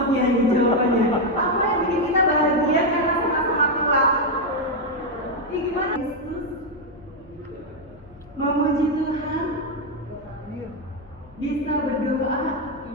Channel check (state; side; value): noise; left; hum, 25 dB below the sound